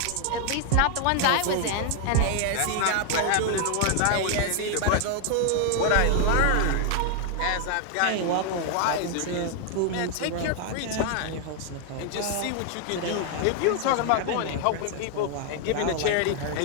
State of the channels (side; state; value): both; different; correlation 0.00